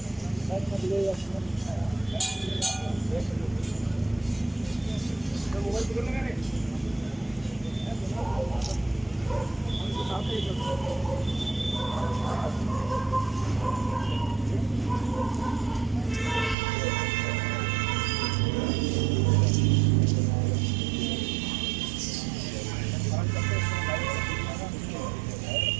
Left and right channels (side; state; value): left; drops out; at 16.6 s